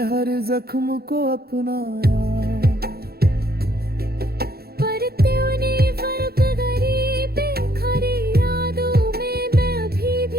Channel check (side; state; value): left; late; 0.45 ms